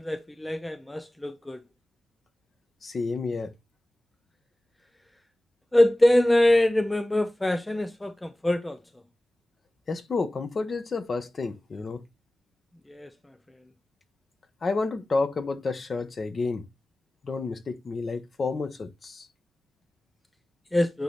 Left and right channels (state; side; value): normal; both; correlation 0.97